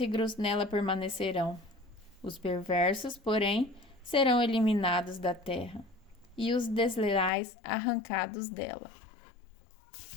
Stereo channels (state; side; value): drops out; right; at 7.3 s